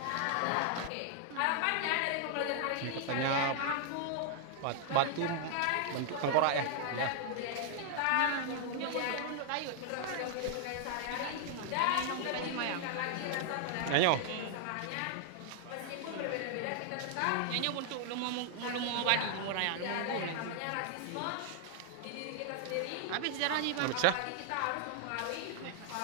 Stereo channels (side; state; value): both; different; correlation 0.00